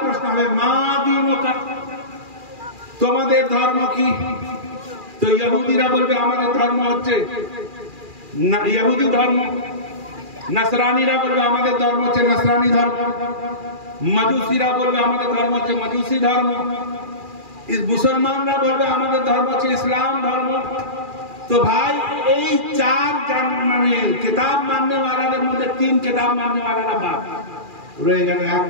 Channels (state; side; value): late; left; 2.4 ms